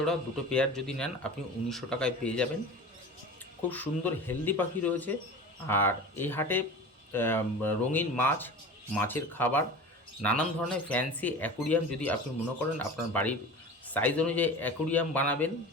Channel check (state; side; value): normal; both; correlation 0.35